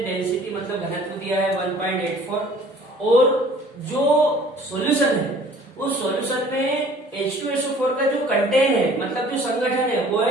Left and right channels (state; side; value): normal; both; correlation 0.52